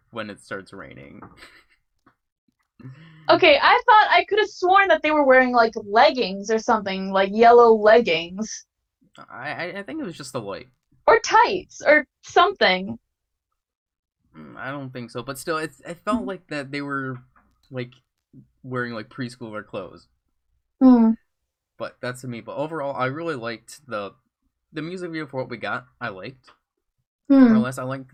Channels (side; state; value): both; identical; correlation 1.00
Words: when it starts raining. Okay, I thought I could have sworn that they were wearing like leggings or something, like yellow leggings. I think it was just the light. Or tights or something. I don't think so, but still, it felt like that they were like wearing like preschooler clothes. Hmm. But that's to me. But overall, I really liked the music video for what we got. I liked more or Hmm. less. I liked